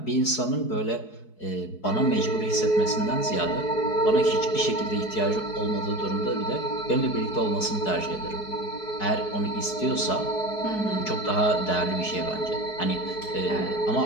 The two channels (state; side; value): late; right; 4.7 ms